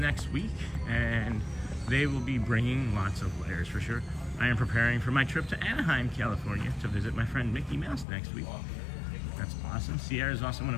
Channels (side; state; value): right; drops out; at 8.1 s